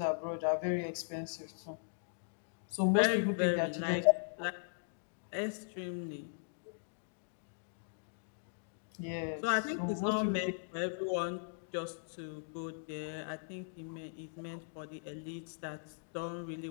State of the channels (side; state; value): right; silent; digital silence